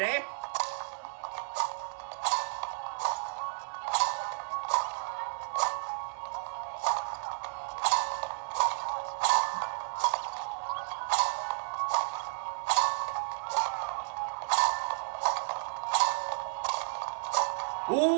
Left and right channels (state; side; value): silent; left; digital silence